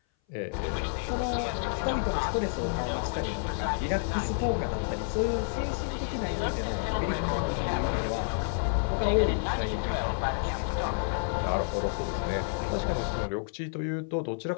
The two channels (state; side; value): silent; right; 57 dB below the other